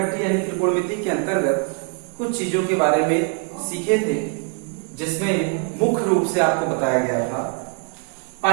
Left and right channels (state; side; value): quieter; left; 37.7 dB